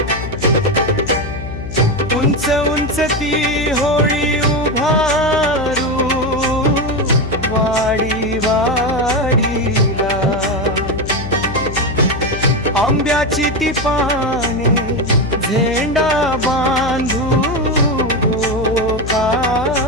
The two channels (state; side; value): noise; left; hum, 8 dB below the sound